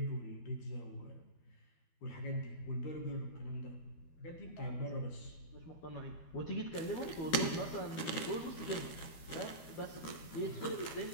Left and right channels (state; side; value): late; right; 12 ms